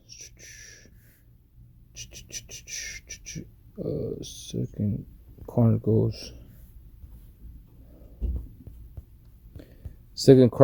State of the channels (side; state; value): both; identical; correlation 1.00